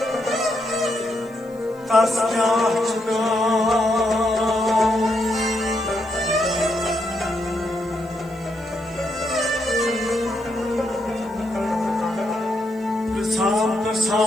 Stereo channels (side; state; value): left; noise; hiss, 29 dB below the sound